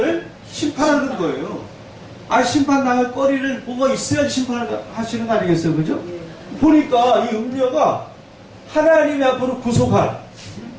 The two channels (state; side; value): identical; both; correlation 1.00